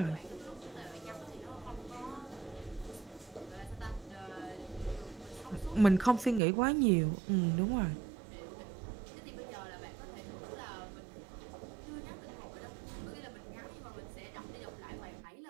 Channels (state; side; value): drops out; left; at 6.4 s